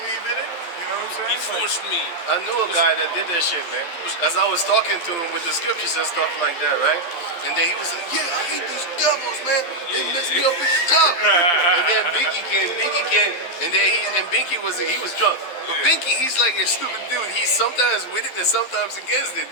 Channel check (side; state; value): right; late; 12 ms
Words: in it. You know what I'm saying? He forced me. I knew a guy that did that shit, man. As I was talking to him with the scriptures and stuff like that, right? And then he was like, yeah, I hate these devils, man. They messed me up at the job. And then Binky came, and then Binky was drunk. But Binky, he's like a stupid dude. He's sometimes with it and sometimes against it.